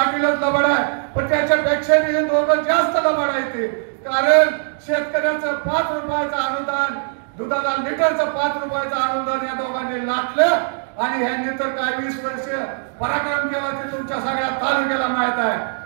लबाड आहे, पण त्याच्यापेक्षा मी दोघं जास्त लबाड आहे ते। कारण शेतकऱ्याचं 5 रुपयाचं अनुदान, दुधाला लिटरचं 5 रुपयाचं अनुदान या दोघांनी लाटलं आणि ह्यांनी तर काय 20 वर्ष पराक्रम केला ते तुमच्या सगळ्या तालुक्याला माहित आहे।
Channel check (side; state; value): left; silent; digital silence